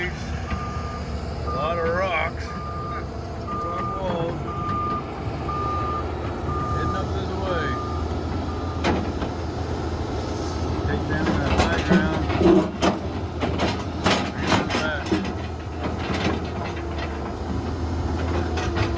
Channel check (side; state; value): both; identical; correlation 1.00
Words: a lot of rocks, rock walls, heading up this way. Take down that high ground, bring it back.